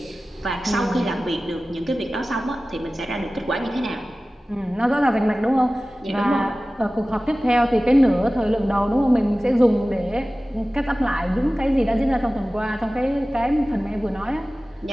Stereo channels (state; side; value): normal; both; correlation 0.97